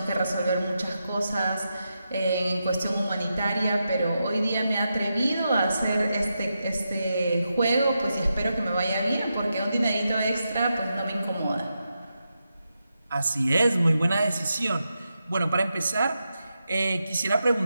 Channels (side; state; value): both; inverted; correlation -0.87